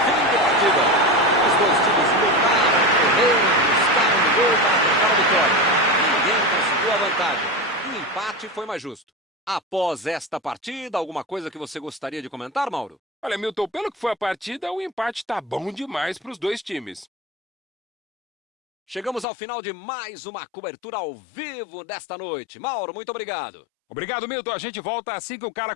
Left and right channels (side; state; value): right; drops out; at 19.2 s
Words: Fim de partida. Os dois times lutaram, correram, buscaram no gol para tentar a vitória. Ninguém conseguiu a vantagem. E o empate foi mais justo. Após esta partida, alguma coisa que você gostaria de comentar, Mauro? Olha, Milton, pelo que foi a partida, o empate tá bom demais para os dois times. Chegamos ao final de mais uma cobertura ao vivo desta noite. Mauro, muito obrigado. Obrigado, Milton. A gente volta assim que o cara